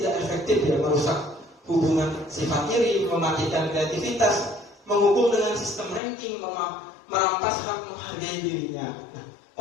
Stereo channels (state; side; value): drops out; right; at 6.0 s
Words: tidak efektif ya, merusak hubungan sifat iri, mematikan kreativitas, menghukum dengan sistem ranking, merampas hak menghargai dirinya. Nah,